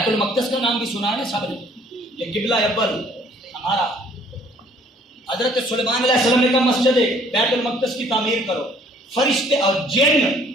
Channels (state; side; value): normal; both; correlation 0.58